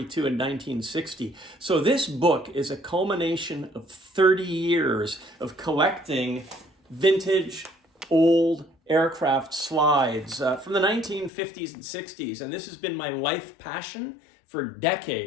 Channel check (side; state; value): right; drops out; at 11.3 s